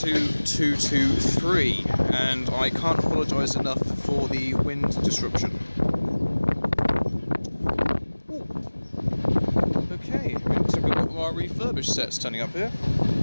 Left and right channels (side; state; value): both; inverted; correlation -1.00